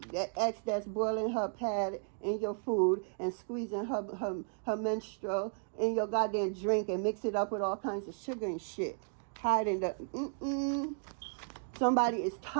ex that's boiling her pad in your food and squeezing her menstrual in your goddamn drink and mix it up with all kinds of sugar and shit. Hiding the Somebody is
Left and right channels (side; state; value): left; silent; digital silence